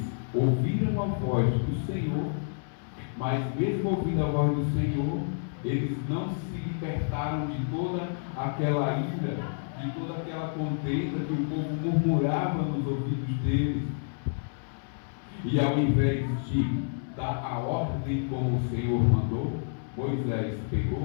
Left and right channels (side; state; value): right; silent; 59 dB below the other